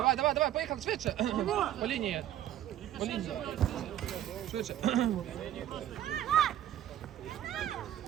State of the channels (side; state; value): left; quieter; 12.0 dB